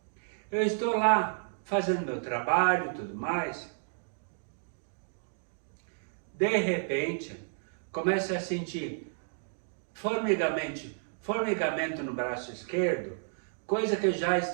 eu estou lá fazendo meu trabalho e tudo mais. De repente, começo a sentir formigamento no braço esquerdo, coisa que eu já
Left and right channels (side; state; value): left; silent; digital silence